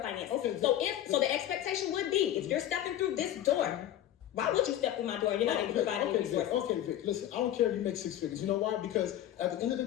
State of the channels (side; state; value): right; quieter; 12.1 dB